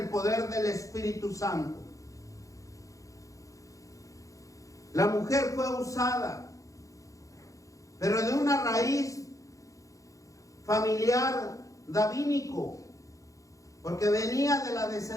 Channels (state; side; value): late; right; 0.16 ms